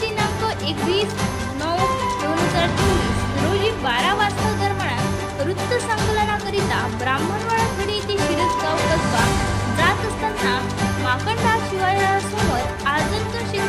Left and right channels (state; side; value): identical; both; correlation 1.00